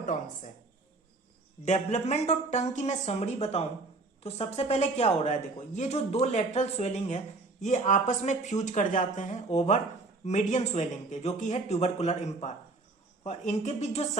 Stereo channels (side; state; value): left; quieter; 3.4 dB